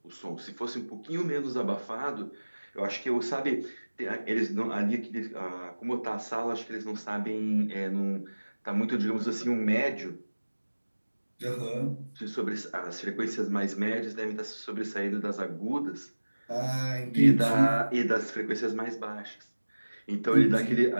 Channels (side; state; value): both; inverted; correlation -1.00